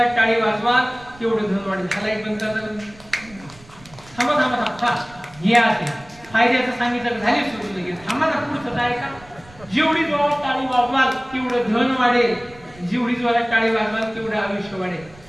टाळी वाजवा तेवढं धन वाढेल. ह्याला एक बंद थांबा हे असे फायद्याचं सांगितलं झाले सुरू लगेच. थांबा ना पुढचं काय का? जेवढी जोरात टाळी वाजवाल तेवढं धन वाढेल, जेवढी जोरात टाळी वाजवाल तेवढं आयुष्य वाढेल.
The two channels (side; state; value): right; noise; rumble, 23 dB below the sound